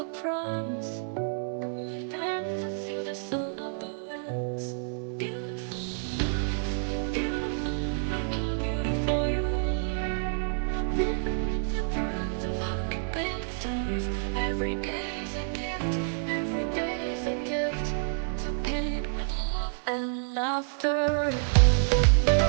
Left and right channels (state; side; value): silent; left; 59 dB below the other